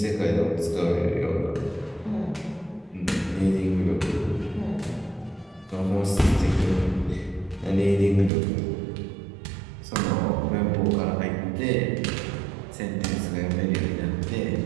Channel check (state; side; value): drops out; left; at 8.3 s